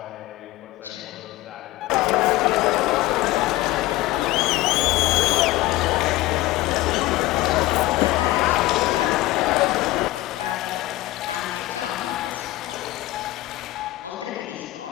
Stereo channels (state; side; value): quieter; right; 17.9 dB